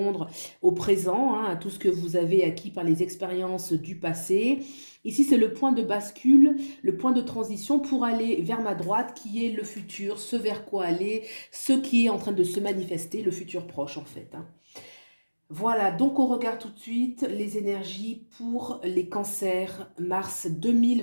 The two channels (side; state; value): both; inverted; correlation -1.00